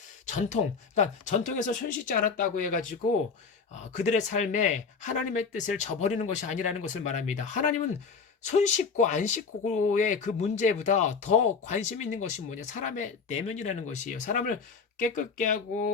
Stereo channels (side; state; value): right; quieter; 5.3 dB